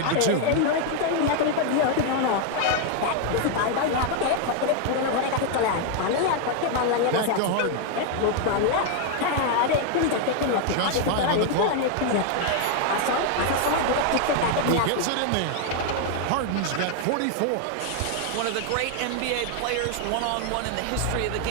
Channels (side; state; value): both; different; correlation 0.00